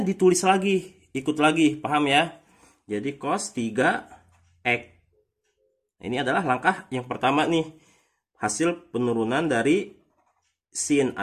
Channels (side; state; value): both; identical; correlation 1.00